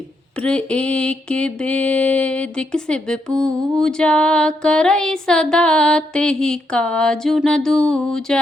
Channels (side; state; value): both; normal; correlation 0.79